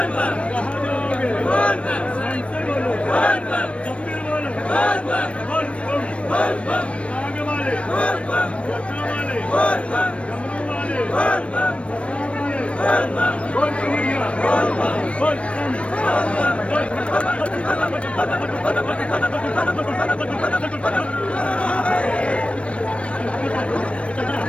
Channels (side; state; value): right; late; 0.061 ms